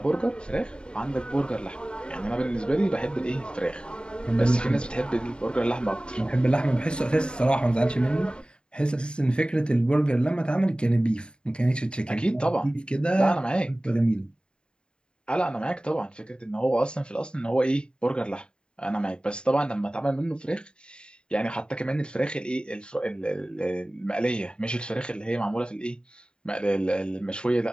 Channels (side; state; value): right; late; 0.051 ms